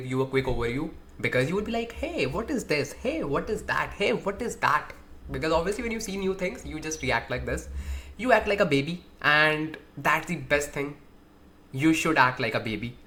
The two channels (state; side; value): identical; both; correlation 1.00